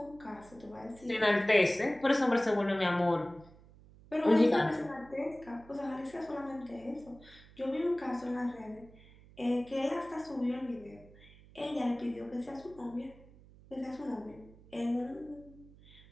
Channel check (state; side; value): noise; right; hum, 23 dB below the sound